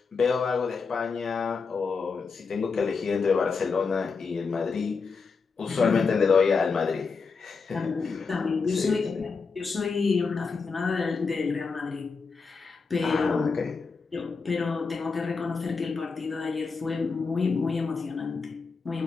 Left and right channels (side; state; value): right; quieter; 4.9 dB